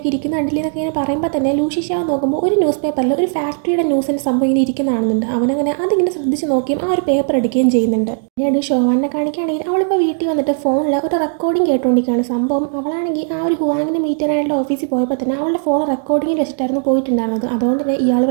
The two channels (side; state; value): left; silent; digital silence